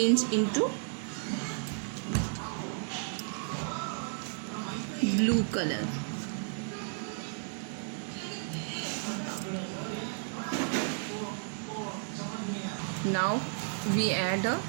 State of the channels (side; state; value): left; silent; 56 dB below the other